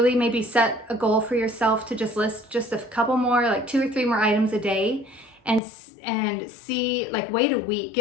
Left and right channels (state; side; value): drops out; right; at 5.6 s